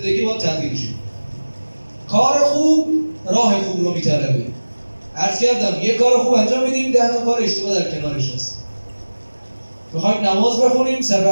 باید تغییر شه. کار خوب راه خوب رو میطلبه. عرض کردم یه کار خوب انجام میدیم، 10 تا کار اشتباه در کنارش هست. میخوایم نماز بخونیم، صف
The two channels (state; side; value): inverted; both; correlation -1.00